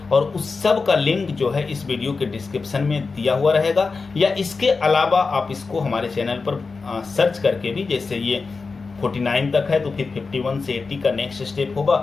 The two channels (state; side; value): quieter; right; 4.4 dB